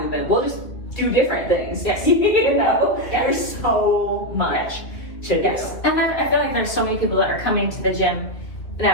movement. We'll just do different things. You know, there's so much to do. And I feel like there's so many people that are coming to the gym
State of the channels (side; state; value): right; late; 2.7 ms